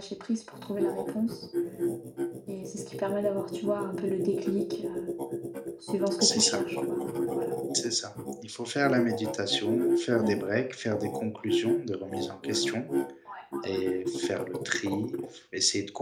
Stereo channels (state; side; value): identical; both; correlation 1.00